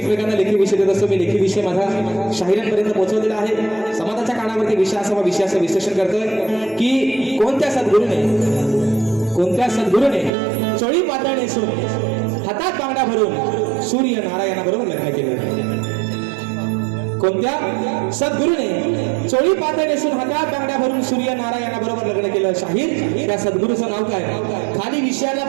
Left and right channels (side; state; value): left; drops out; at 10.3 s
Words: लेखी विषय देत असतो मी लेखी विषय माझा शाहिरांपर्यंत पोहोचवलेला आहे समाजाच्या कानावरती विषयाचं विश्लेषण करतोय की कोणत्या सद्गुरूने चोळी पातळ नेसून हातात बांगडा भरून सूर्य नारायणाबरोबर लग्न केलं कोणत्या सद्गुरूने चोळी पातळ नेसून हातात बांगड्या भरून सूर्य नारायणाबरोबर लग्न केलं शाहीर त्या सद्गुरूचं नाव काय खाली विषयाला